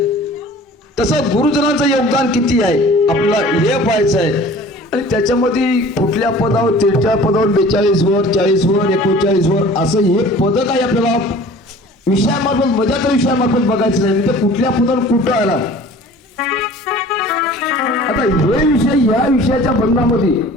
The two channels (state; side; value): normal; both; correlation 0.46